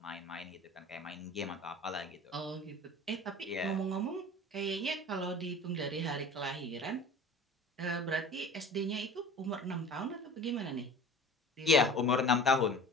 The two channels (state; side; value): normal; both; correlation 0.40